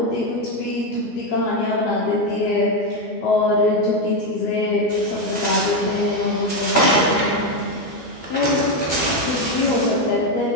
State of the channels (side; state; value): right; late; 12 ms